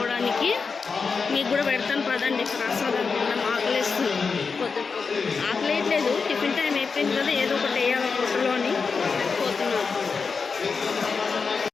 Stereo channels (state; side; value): quieter; right; 5.0 dB